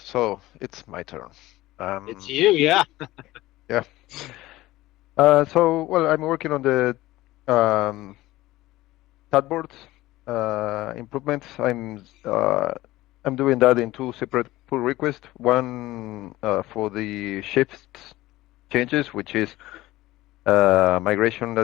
so it's my turn. It's Um, you. Yeah. yeah. Well, I'm working on the um, chatbot improvements. I'm doing that in two separate pull requests. One for the shifts changes, which is migration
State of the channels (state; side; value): quieter; right; 17.6 dB